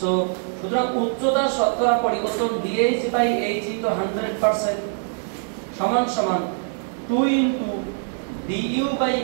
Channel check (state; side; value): silent; left; 61 dB below the other